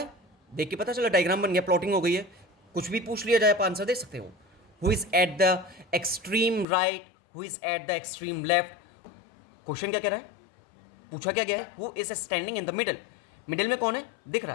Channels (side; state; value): right; drops out; at 6.7 s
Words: देख के पता चला, डायग्राम बन गया, प्लॉटिंग हो गई है, कुछ भी पूछ लिया जाए आप आंसर दे सकते हो। Who is at the extreme right, who is at the extreme left. Question क्या कह रहा है, पूछा क्या गया है, who is standing in the middle, middle में कौन है, दिख